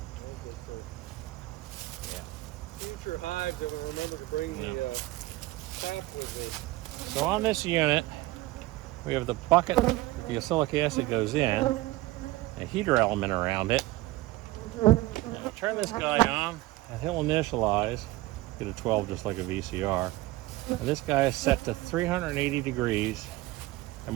Future hives, I will remember to bring the tap with me. So on this unit, we have the bucket that the oxalic acid goes in, a heater element around it. And we'll turn this guy on, and he'll initialize, get a 12 just like a VCR. And this guy is set to 380 degrees.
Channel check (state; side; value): quieter; left; 18.7 dB